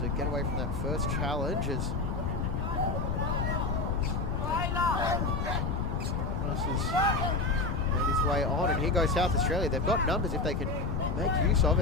get away from that first challenge as has made his way on, and here goes South Australia. They've got numbers if they can make use of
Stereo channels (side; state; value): left; noise; rumble, 2 dB below the sound